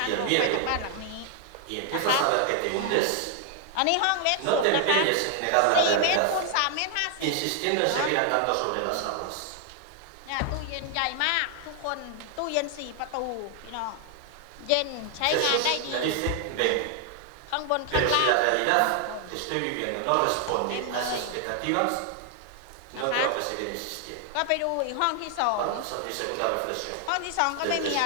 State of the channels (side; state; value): both; different; correlation 0.00